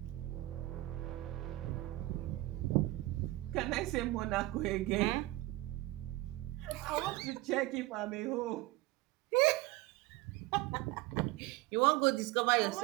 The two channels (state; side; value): quieter; left; 18.9 dB